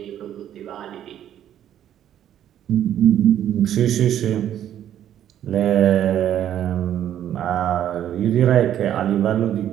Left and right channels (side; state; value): left; quieter; 10.8 dB